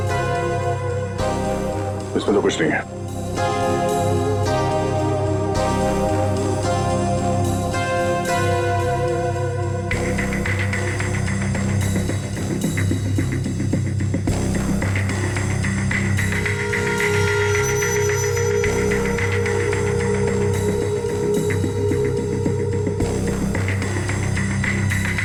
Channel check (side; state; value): both; identical; correlation 1.00